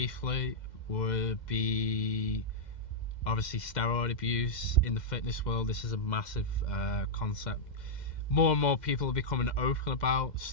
would be obviously steroid abuse in the fitness world. This is a massive concept. More and more people are becoming open about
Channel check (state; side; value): late; right; 2.1 ms